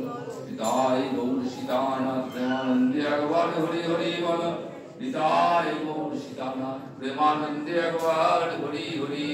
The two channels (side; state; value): both; identical; correlation 1.00